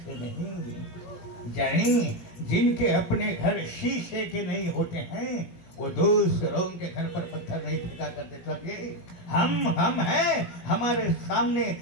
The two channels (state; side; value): late; right; 17 ms